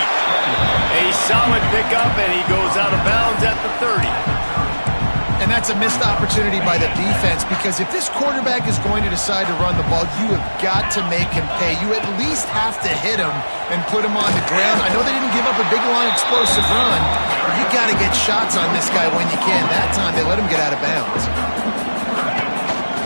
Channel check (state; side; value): inverted; both; correlation -1.00